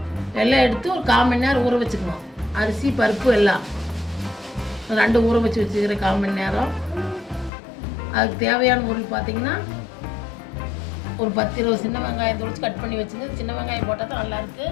எல்லாம் எடுத்து ஒரு 1/4 மணி நேரம் ஊற வச்சுக்கணும். அரிசி பருப்பு எல்லாம் 2 ஊற வச்சுருக்கிறேன் 1/4 மணி நேரம். அதுக்கு தேவையான பொருள் பார்த்திங்கன்னா ஒரு 10-20 சின்ன வெங்காயம் தொளிச்சு கட் பண்ணி வச்சுங்க. சின்ன வெங்காயம் போட்டால் தான் நல்லாயிருக்கு.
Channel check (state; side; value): drops out; right; at 7.5 s